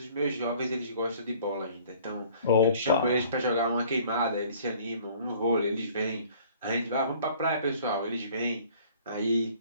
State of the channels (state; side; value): inverted; both; correlation -0.53